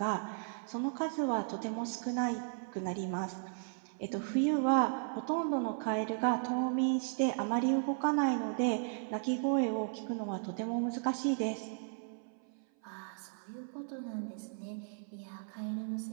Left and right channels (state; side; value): silent; left; 54 dB below the other